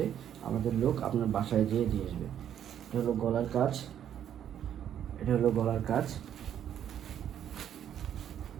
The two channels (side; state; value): left; quieter; 9.9 dB